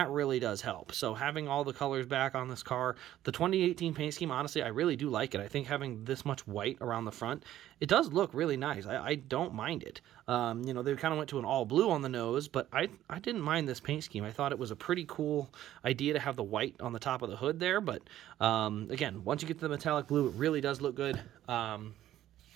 really does help. So having all the colors back on this car, the 2018 paint scheme, honestly, I really do like it. I think having this much white around the front, it does look really nice. I don't mind it. They kind of went to an all blue on the nose, but I didn't mind this paint scheme. I thought it was a pretty cool idea to have the white on the top of the hood there, but again, once you get to the metallic blue, it really does look good.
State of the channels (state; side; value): quieter; left; 12.9 dB